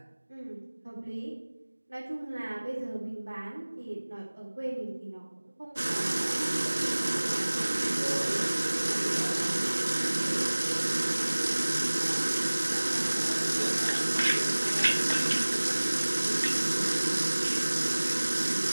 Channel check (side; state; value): both; inverted; correlation -1.00